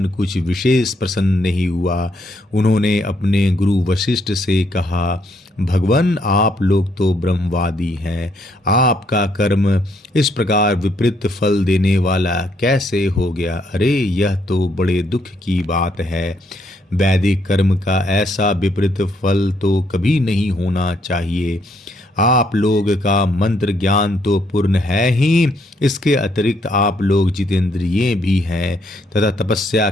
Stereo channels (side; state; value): both; normal; correlation 0.72